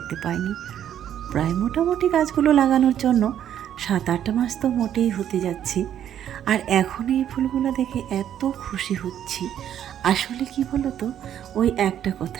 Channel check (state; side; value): quieter; left; 10.3 dB